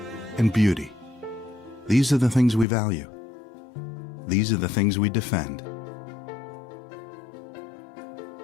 and beauty. These are the things we value. These are the things we defend.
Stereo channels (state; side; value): drops out; right; at 2.7 s